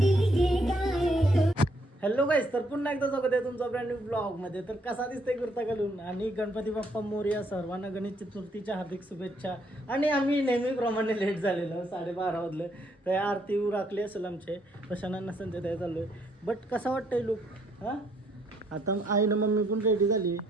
हॅलो गाईस, तर पुन्हा एकदा स्वागत आहे तुमचा ब्रँड न्यू ब्लॉग मध्ये. तर कसा दिसतोय कुर्ता घालून आणि गणपती बाप्पा मोरया. सर्वांना गणेश चतुर्थीच्या हार्दिक शुभेच्छा. आणि आम्ही नेहमीप्रमाणे लेट झालेलो, 12:30 वाजले. तर आरती राखली असेल आमचे प्रशांना संजय त्या चाललोय. बट कसा वाटतंय लुक? हां, आता आईनं मम्मी पण रेडी झाली,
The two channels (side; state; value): both; normal; correlation 0.70